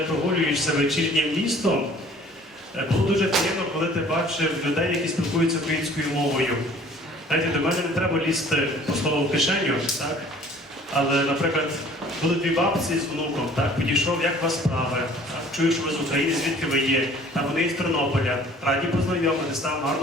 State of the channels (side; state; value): both; normal; correlation 0.52